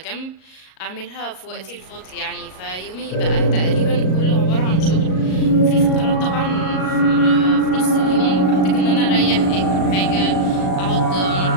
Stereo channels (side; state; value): right; late; 38 ms